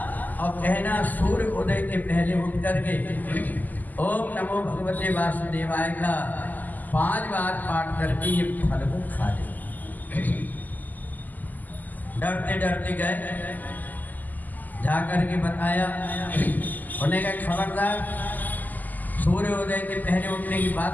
और कहना सूर्य उदय के पहले उठ करके ओम नमो भगवते वासुदेवाय का 5 बार पाठ करके ये फल को खा ले। डरते डरते गए, जाकर के बताया, उन्हें कहा खबरदार, सूर्योदय के पहले उठने की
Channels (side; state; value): right; late; 0.083 ms